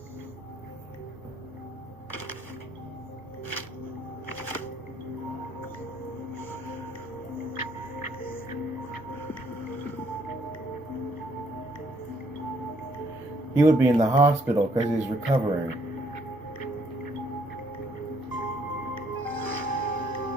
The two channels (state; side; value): normal; both; correlation 0.67